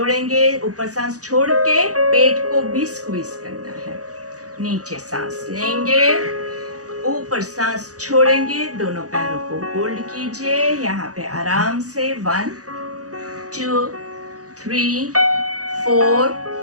ऊपर सांस छोड़ के पेट को भी स्क्वीज करना है। नीचे सांस लेंगे, ऊपर सांस छोड़ेंगे, दोनों पैरों को होल्ड कीजिए यहाँ पे आराम से। 1 2 3 4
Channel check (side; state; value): left; late; 0.67 ms